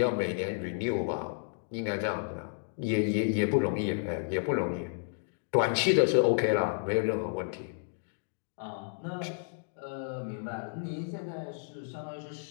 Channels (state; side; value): silent; right; digital silence